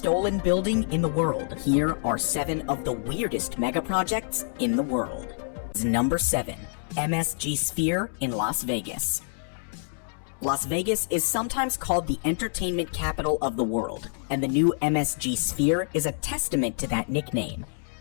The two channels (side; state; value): right; silent; 60 dB below the other